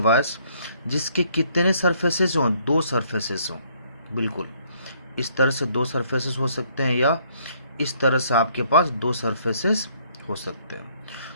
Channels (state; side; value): inverted; both; correlation -0.66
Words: जिसके कितने सरफेसेस हों? दो सरफेसेस हों। बिल्कुल इस तरह से दो सरफेसेस हो सकते हैं, या इस तरह से आपके पास दो सरफेसेस हो सकते